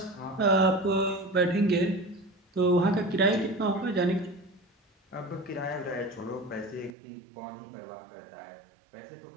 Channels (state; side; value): drops out; left; at 6.9 s